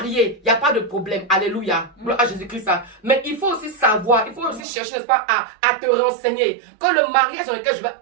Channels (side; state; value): left; drops out; at 4.6 s